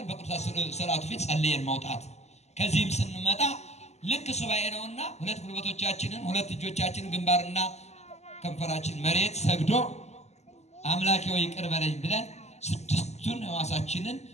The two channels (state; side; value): late; right; 0.32 ms